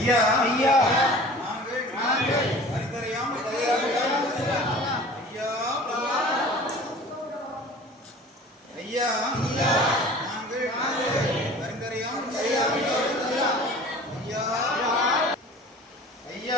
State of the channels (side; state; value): both; normal; correlation 0.43